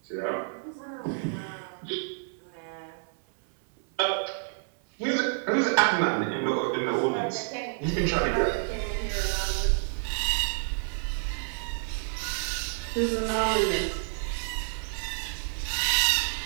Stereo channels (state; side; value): silent; left; 59 dB below the other